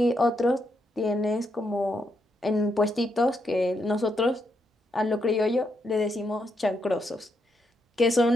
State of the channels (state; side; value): normal; both; correlation 0.80